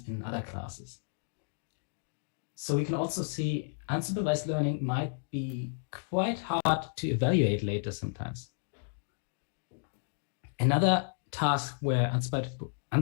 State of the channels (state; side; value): silent; right; digital silence